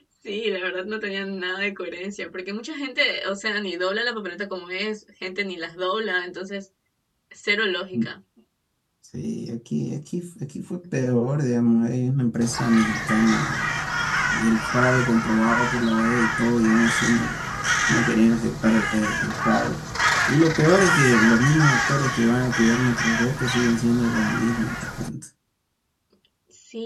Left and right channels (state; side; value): identical; both; correlation 1.00